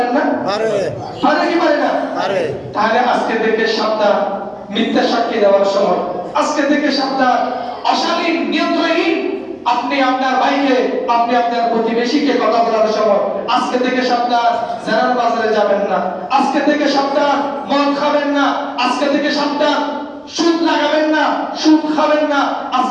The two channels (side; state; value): both; identical; correlation 1.00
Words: না? পারে কি পারে না? পারে। তাহলে আজকে থেকে সাবধান মিথ্যা সাক্ষী দেওয়ার সময়, আজকে থেকে সাবধান অশালীন নিয়ন্ত্রণহীন আপনি আপনার ভাইকে, আপনি আপনার প্রতিবেশীকে কথা বলার সময়, আজকে থেকে সাবধান জেনার বাজারে যাবেন না, আজকে থেকে সাবধান মদ খাবেন না, আজকে থেকে সাবধান সুদ লাগাবেন না, সুদ খাবেন না,